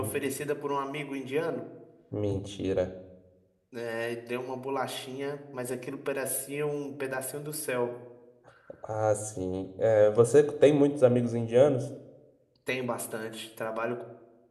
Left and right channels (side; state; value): both; identical; correlation 1.00